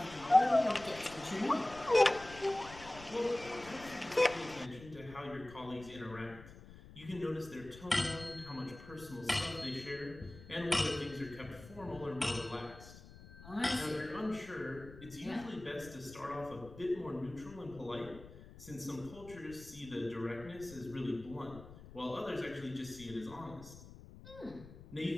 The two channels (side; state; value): left; noise; rumble, 17 dB below the sound